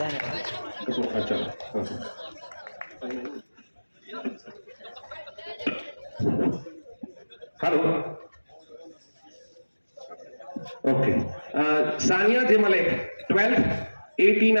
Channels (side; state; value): both; inverted; correlation -1.00